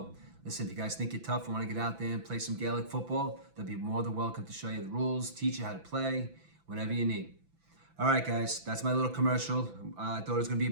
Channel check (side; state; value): left; late; 6.0 ms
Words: listen, if you guys think you're tough and want to get out there and play some Gaelic football, they'll be more than welcome to show you the rules, teach you how to play, whatever you need. All right, guys, that's my little commercial. I thought it was going to be